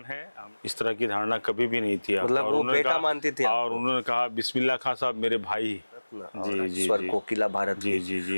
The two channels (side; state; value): both; inverted; correlation -1.00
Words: है। इस तरह की धारणा कभी भी नहीं थी आपका। मतलब और वो उन्होंने बेटा कहा, मानती थी और आपको? उन्होंने कहा बिस्मिल्लाह खां साहब मेरे भाई। और जी स्वर जी कोकिला भारत जी की। जी